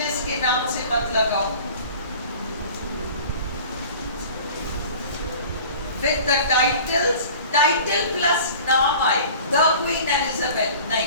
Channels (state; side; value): inverted; both; correlation -0.43